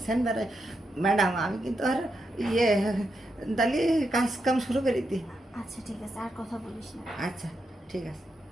সেন বেড়ায়। ম্যাডাম আমি কিন্তু আর ইয়ে তাহলে কাজ কাম শুরু করে দিই। আচ্ছা ঠিক আছে, আর কথা বলিস না। আচ্ছা ঠিক আছে।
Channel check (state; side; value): normal; both; correlation 0.84